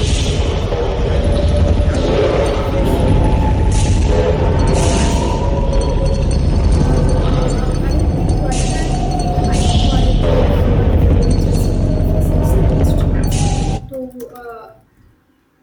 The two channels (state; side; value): identical; both; correlation 1.00